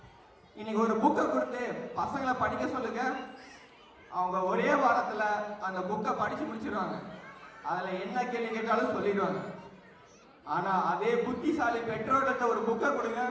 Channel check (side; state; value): both; identical; correlation 1.00